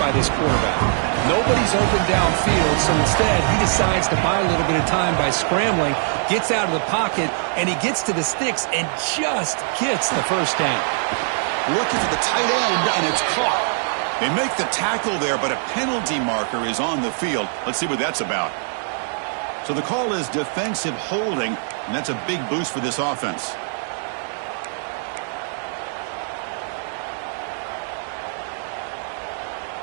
this quarterback. Nobody's open downfield, so instead he decides to buy a little bit of time by scrambling, gets out of the pocket, and he gets to the sticks and just gets the first down. Looking for the tight end, and it's caught. They make the tackle there, but a penalty marker is on the field. Let's see what that's about. So the call is defensive holding, and that's a big boost for this offense.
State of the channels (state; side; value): silent; left; digital silence